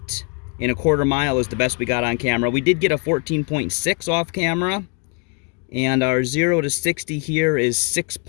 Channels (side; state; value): right; quieter; 33.7 dB